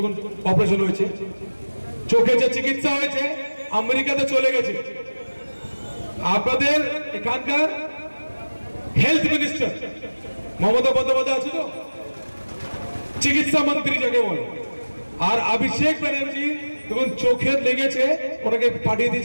অপারেশন হয়েছে, চোখে যে চিকিৎসা হয়েছে, আমেরিকাতে চলে গেছে। আপনাদের এখানকার হেলথ মিনিস্টার মমতা বন্দ্যোপাধ্যায় আছে তো, চিকিৎসা মন্ত্রী যাকে বলে। আর অভিষেক ব্যানার্জি যখন চোখে লেগেছে, ওনাকে পাঠিয়ে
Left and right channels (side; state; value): both; inverted; correlation -1.00